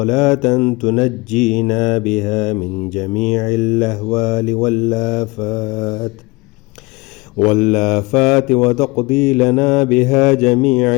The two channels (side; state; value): right; quieter; 24.2 dB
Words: تنجينا بها من جميع الأهوال والآفات وتقضي لنا بها جميع